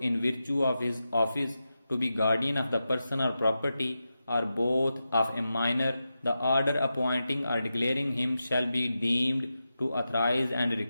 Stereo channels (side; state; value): both; inverted; correlation -0.90